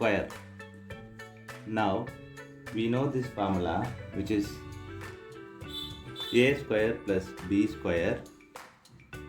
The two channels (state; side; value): identical; both; correlation 1.00